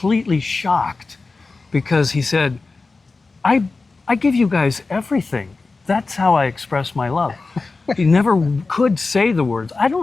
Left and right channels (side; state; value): right; quieter; 3.8 dB